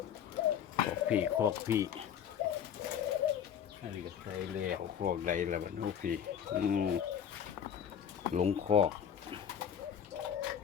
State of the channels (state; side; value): quieter; right; 8.6 dB